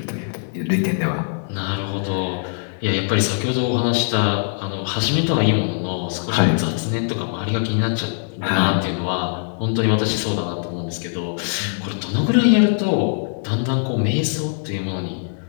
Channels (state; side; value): silent; right; digital silence